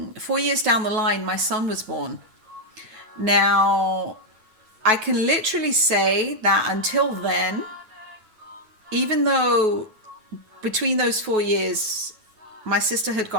years down the line, my son was born. Now, I can literally say that until then, even though between those 4 years, my sister had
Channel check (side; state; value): left; late; 9.3 ms